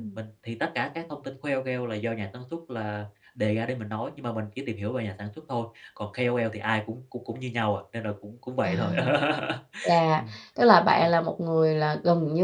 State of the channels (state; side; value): identical; both; correlation 1.00